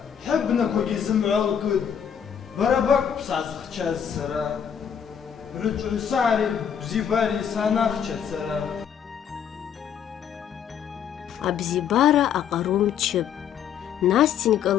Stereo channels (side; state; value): right; quieter; 8.3 dB